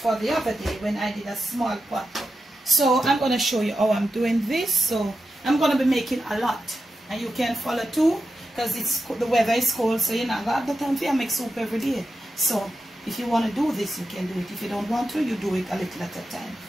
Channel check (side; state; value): both; normal; correlation 0.90